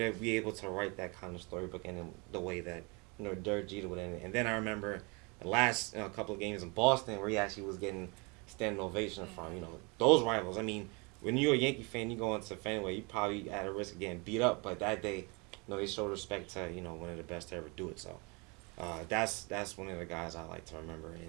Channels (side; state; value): left; quieter; 30.1 dB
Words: be able to write that kind of storybook in the way that, Derek Jeter would end it. And then I remember the last couple of games in Boston where he actually was getting standing ovation from, those rivals. When you're a Yankee fan, you go into Fenway, you probably at a risk of getting beat up. But that day, they showed respect to, one of the best to ever do it. So that's one of the guys I like to remember